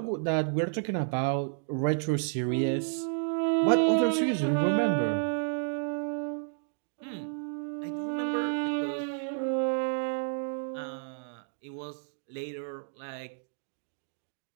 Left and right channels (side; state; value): left; silent; digital silence